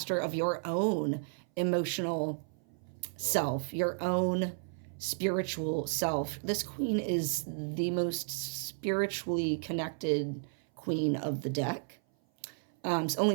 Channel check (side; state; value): left; silent; 56 dB below the other